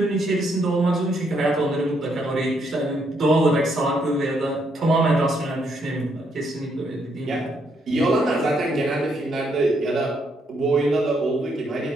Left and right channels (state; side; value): normal; both; correlation 0.74